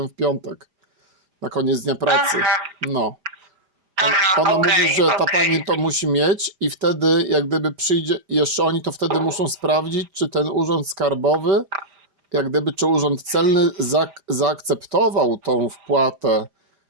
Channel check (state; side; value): late; left; 4.9 ms